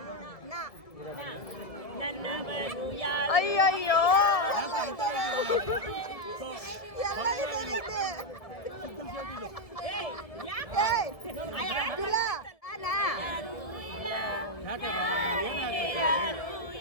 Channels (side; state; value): right; late; 1.7 ms